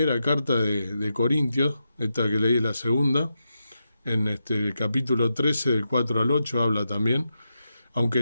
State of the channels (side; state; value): both; inverted; correlation -0.87